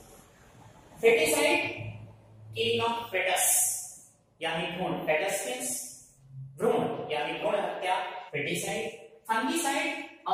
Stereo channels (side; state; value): both; identical; correlation 1.00